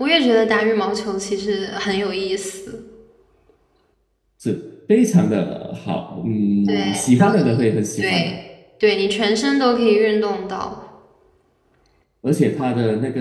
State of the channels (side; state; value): both; identical; correlation 1.00